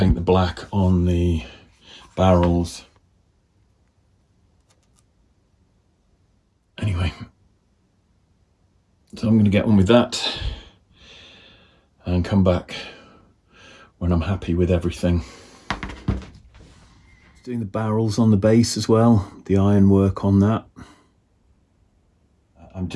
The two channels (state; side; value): identical; both; correlation 1.00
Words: the black on the barrels. Anyway, so I'm going to get on with that and come back when I'm happy with everything. Doing the barrels on the base as well, the ironwork on that. I'm